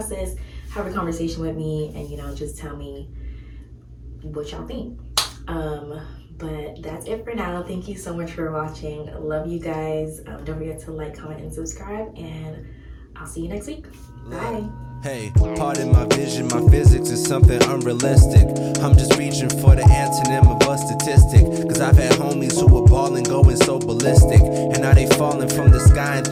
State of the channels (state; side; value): identical; both; correlation 1.00